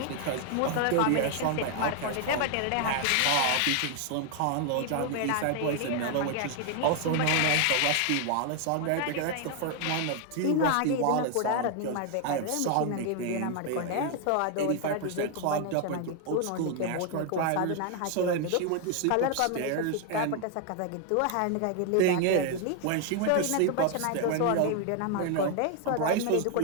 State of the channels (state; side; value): different; both; correlation 0.00